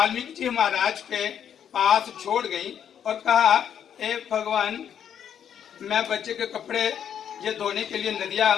जी महाराज के पास छोड़ गई और कहा, ए भगवान, मैं बच्चे के कपड़े ये धोने के लिए नदिया,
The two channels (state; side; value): quieter; right; 8.9 dB